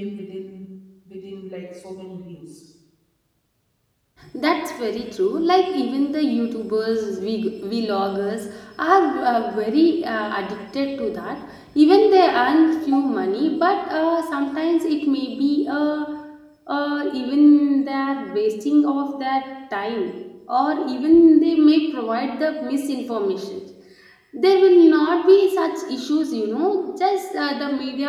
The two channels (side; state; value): both; identical; correlation 1.00